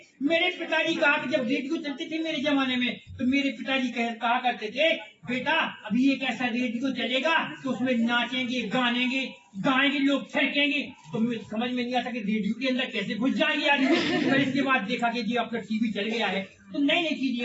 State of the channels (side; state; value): both; identical; correlation 1.00